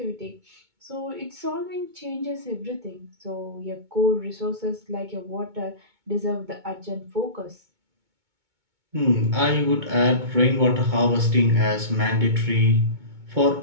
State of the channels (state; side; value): late; left; 2.2 ms